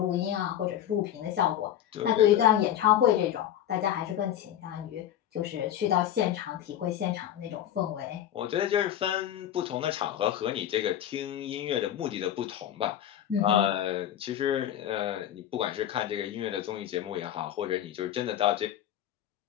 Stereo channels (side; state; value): right; quieter; 11.2 dB